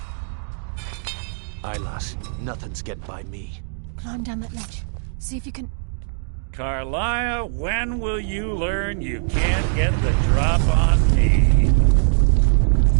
Aye, lass. Nothing's getting by me. Climb down that ledge. See if you can... Carlia, when will you learn you can't get the drop on me?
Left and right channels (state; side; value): silent; left; digital silence